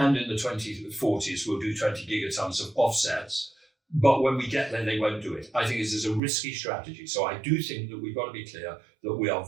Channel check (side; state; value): left; drops out; at 6.2 s